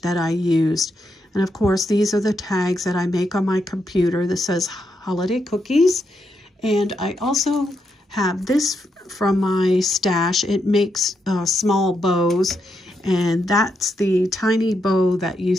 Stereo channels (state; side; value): normal; both; correlation 0.81